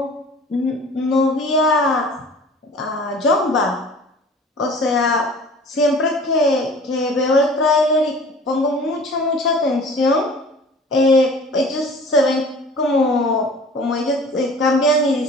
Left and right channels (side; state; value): both; normal; correlation 0.45